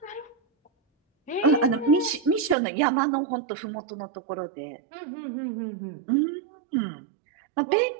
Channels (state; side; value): drops out; left; at 2.6 s